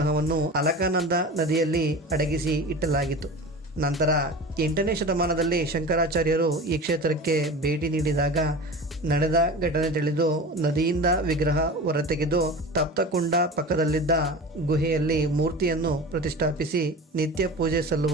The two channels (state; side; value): normal; both; correlation 0.33